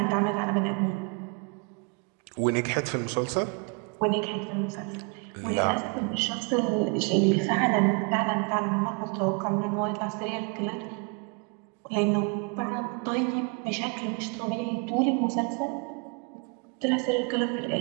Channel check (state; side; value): quieter; left; 34.1 dB